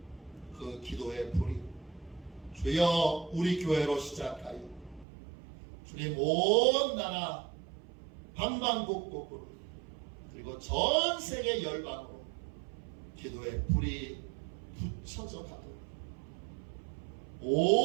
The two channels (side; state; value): left; drops out; at 5.1 s